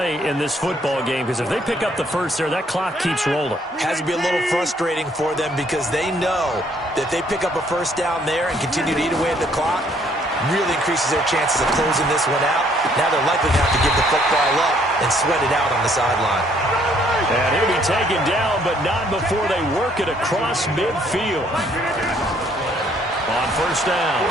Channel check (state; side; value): normal; both; correlation 0.65